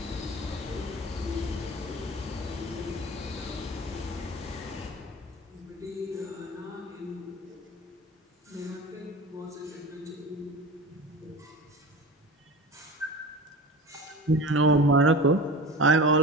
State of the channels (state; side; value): normal; both; correlation 0.33